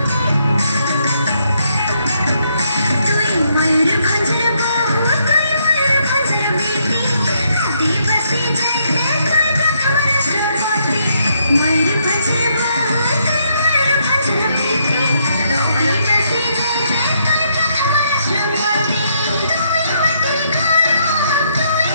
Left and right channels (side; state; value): both; inverted; correlation -0.74